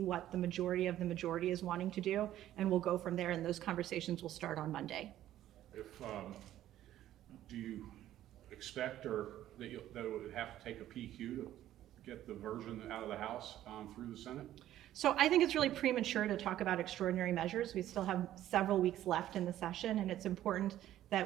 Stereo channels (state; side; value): quieter; left; 12.9 dB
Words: the majority of the majority is wanting to do, and we'll go from there, and those conversations will start on Monday. Do you expect that it would have to take a PQ to get the version out of the House through the Senate? So I think it's really premature to talk about extraordinary measures. We still have several weeks left in the session, and it's important